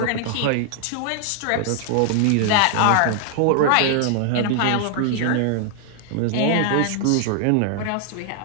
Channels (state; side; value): different; both; correlation 0.00